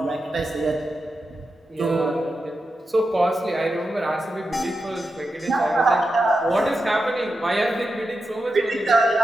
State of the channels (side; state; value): both; normal; correlation 0.89